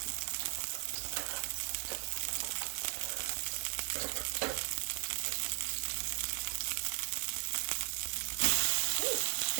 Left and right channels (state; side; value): silent; left; 53 dB below the other